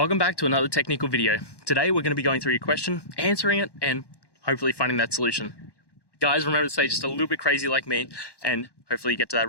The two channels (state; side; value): late; right; 1.1 ms